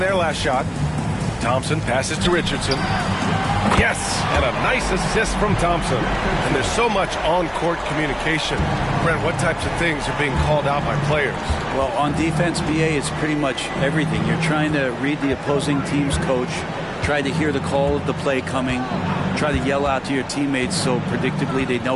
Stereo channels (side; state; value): both; identical; correlation 1.00